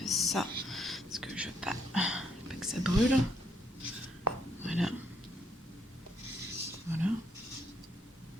ça, parce que je veux pas que ça brûle. Voilà.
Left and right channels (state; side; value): normal; both; correlation 0.72